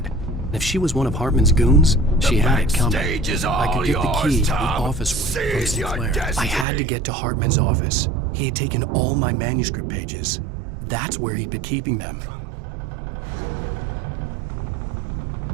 If she was one of Hartman's goons, she had it coming. I could get the key to the office from Sinclair. I had to get to Hartman's office. He had taken all my manuscript pages. That's where he'd been keeping them. Come out and face the music, Birch. It's time to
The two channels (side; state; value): left; drops out; at 6.7 s